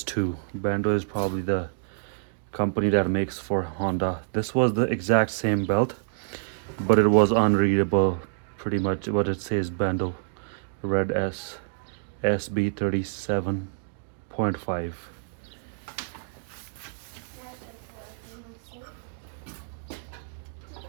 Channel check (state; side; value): silent; left; digital silence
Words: Bando is probably the company that makes for Honda. This was the exact same belt, but it was unreadable. Pretty much what it says, Bando Red S SB37.5.